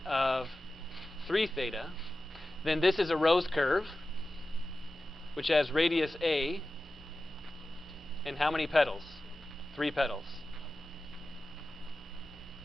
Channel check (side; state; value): both; normal; correlation 0.95